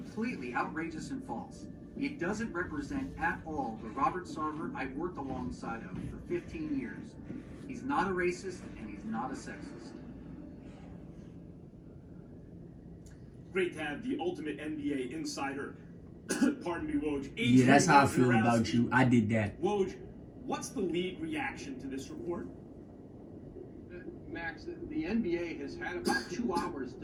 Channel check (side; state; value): both; identical; correlation 1.00